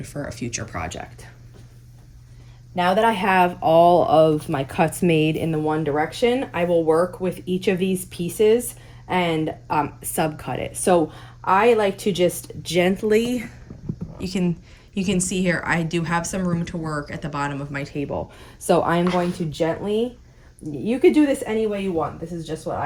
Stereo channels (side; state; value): both; identical; correlation 1.00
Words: for a future project. Now that I have all of my cuts made in the one direction, I will work with each of these pieces and subcut it. So I like to just gently, you can see here, I do have some room to work at the bottom of my table. So I am going to gently, you could do this any way you want. This is just what